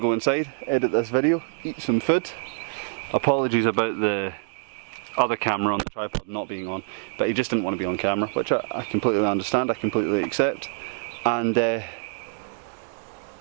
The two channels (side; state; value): left; silent; digital silence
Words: go inside, edit this video, eat some food. Apologies about the other camera on the tripod not being on, but he just didn't want to be on camera, which I completely understand, I completely accept. And